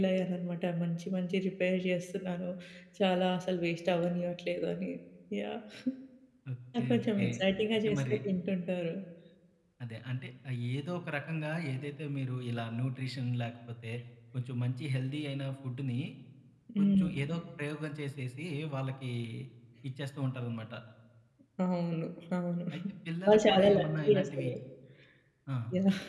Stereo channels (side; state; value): both; identical; correlation 1.00